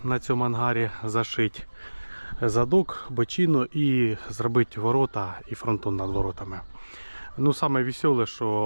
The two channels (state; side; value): inverted; both; correlation -1.00